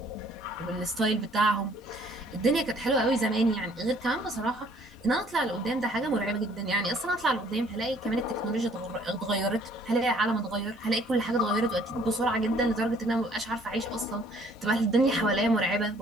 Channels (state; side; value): normal; both; correlation 0.60